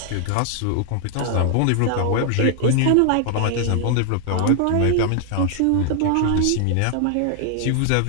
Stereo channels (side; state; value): both; different; correlation 0.00